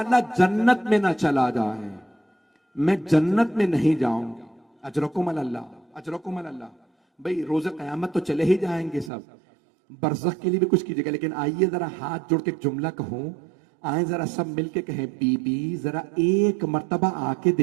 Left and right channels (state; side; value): drops out; left; at 9.1 s